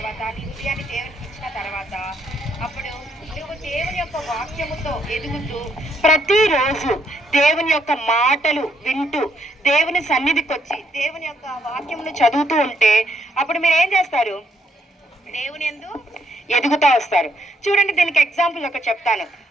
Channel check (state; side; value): normal; both; correlation 0.73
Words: నీ హృదయాన్ని దేవునికి ఇచ్చిన తర్వాత, అప్పుడు నువ్వు దేవుని యొక్క వాక్యముతో ఎదుగుతూ ప్రతిరోజు దేవుని యొక్క మాటలు వింటూ దేవుని సన్నిధికి వచ్చి దేవుని యొక్క వాక్యమును చదువుతూ ఉంటే అప్పుడు మీరు ఏం చేస్తారు? దేవుని యందు ఎదుగుతూ వస్తారు. చూడండి, దీనికి ఎగ్జాంపుల్ ఒక చెప్తాను.